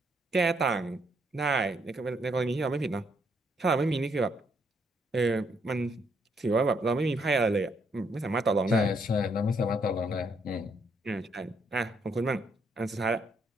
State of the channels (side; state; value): both; normal; correlation 0.73